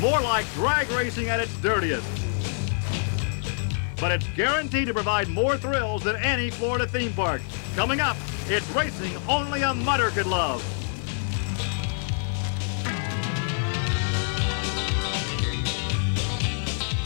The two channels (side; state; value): right; silent; 61 dB below the other